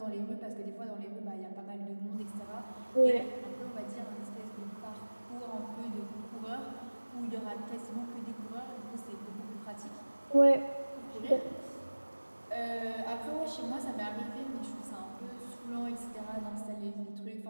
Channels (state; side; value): inverted; both; correlation -1.00